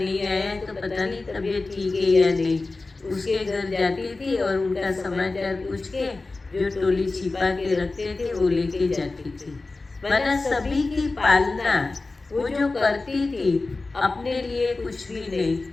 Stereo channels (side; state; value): right; quieter; 3.5 dB